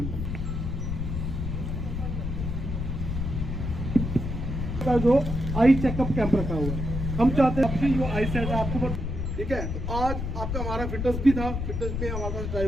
का जो आई चेकअप कैंप रखा हुआ है, हम चाहते हैं आपकी जो आई सेट है आपको ठीक है। तो आज आपका हमारा फिटनेस भी था, फिटनेस में हमारे पास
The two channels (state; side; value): noise; left; rumble, 3 dB below the sound